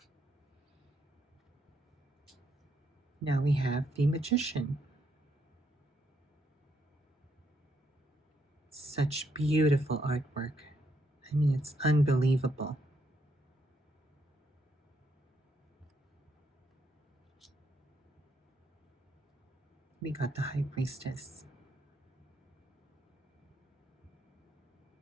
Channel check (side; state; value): both; normal; correlation 0.76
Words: Now we have the Magician. Such beautiful artwork. I mean, it's unbelievable. We got the High Priestess.